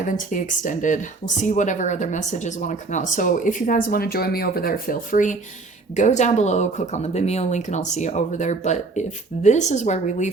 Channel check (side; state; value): left; quieter; 3.7 dB